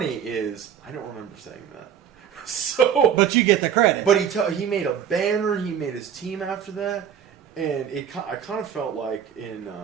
is I don't remember saying that. But you get the credit. But he made a banner. He made his team after that, and I kind of felt like in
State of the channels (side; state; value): left; quieter; 8.6 dB